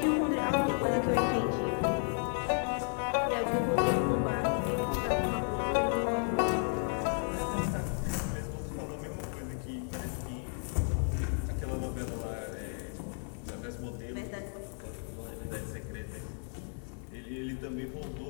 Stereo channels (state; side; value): silent; right; 56 dB below the other